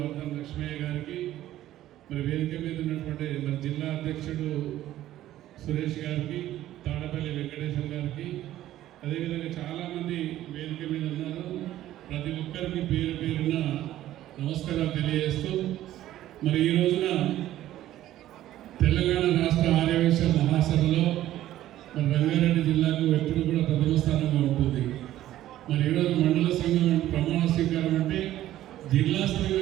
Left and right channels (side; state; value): left; quieter; 13.6 dB